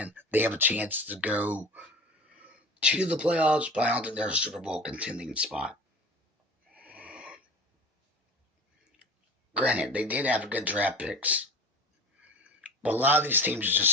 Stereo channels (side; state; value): both; normal; correlation 0.37